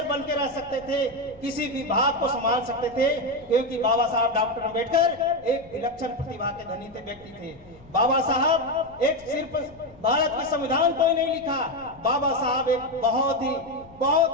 बन के रह सकते थे, किसी विभाग को संभाल सकते थे, क्योंकि बाबा साहब डॉक्टर अम्बेडकर एक विलक्षण प्रतिभा के धनी थे, व्यक्ति थे। बाबा साहब एक सिर्फ भारत के संविधान को ही नहीं लिखा, बाबा साहब एक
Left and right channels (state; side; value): noise; left; rumble, 25 dB below the sound